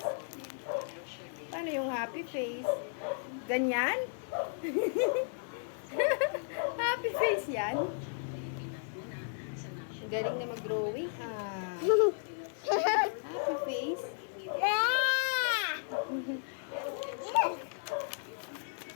Paano yung happy face? Ganyan? Happy face yan. Galing na mag-drawing. Ah. Happy face.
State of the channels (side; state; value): right; silent; digital silence